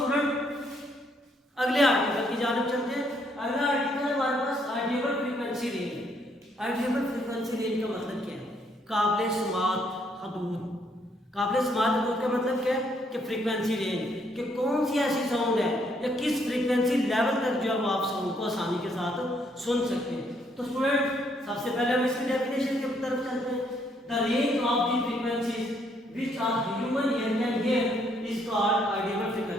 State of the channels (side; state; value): both; normal; correlation 0.70